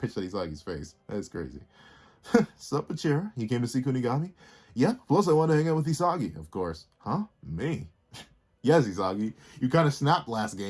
at Isagi's face. That is crazy. Sup, Bachira? You came to see Kunigami? Yeah, plus I want to hang out with Isagi, of course. Huh? Me? Yes, Isagi. You kind of snapped last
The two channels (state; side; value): identical; both; correlation 1.00